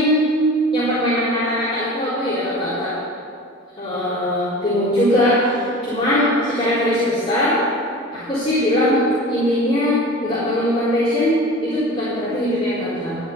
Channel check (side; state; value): both; normal; correlation 0.37